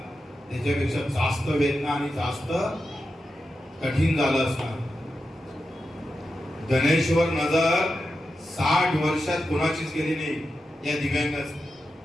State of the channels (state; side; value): normal; both; correlation 0.90